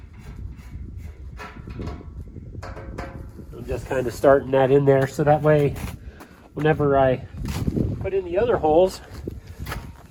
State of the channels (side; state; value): both; identical; correlation 1.00